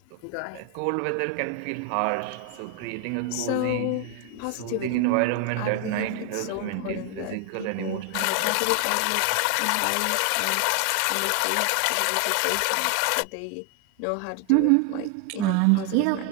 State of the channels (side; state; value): both; different; correlation 0.00